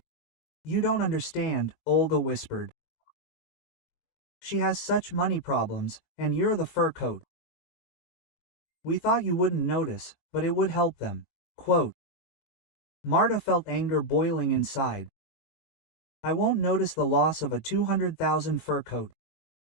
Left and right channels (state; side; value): late; right; 21 ms